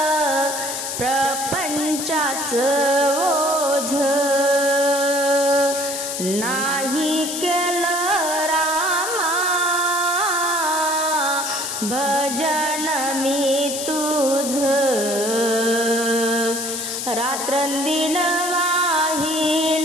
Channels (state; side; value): noise; left; hiss, 4 dB below the sound